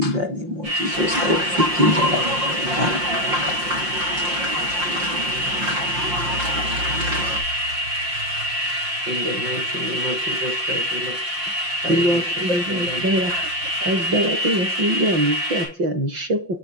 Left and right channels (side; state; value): left; late; 5.7 ms